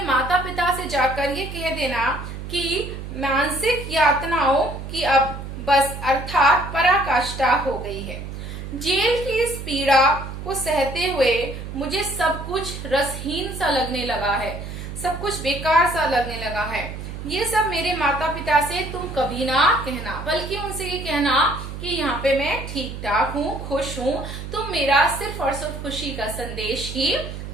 माता पिता से जाकर ये कह देना कि मानसिक यातनाओं की अब बस अर्थात पराकाष्ठा हो गई है। जेल की इस पीड़ा को सहते हुए मुझे सब कुछ रसहीन सा लगने लगा है, सब कुछ बेकार सा लगने लगा है। ये सब मेरे माता पिता से तुम कभी ना कहना, बल्कि उनसे ये कहना कि यहाँ पे मैं ठीक ठाक हूँ, खुश हूँ, तुम मेरा सिर्फ और सिर्फ खुशी का संदेश ही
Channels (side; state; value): right; noise; hum, 9 dB below the sound